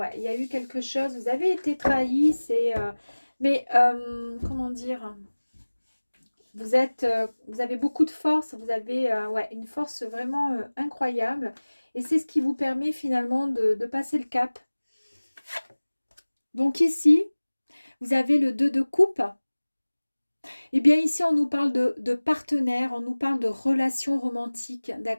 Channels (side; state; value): both; inverted; correlation -1.00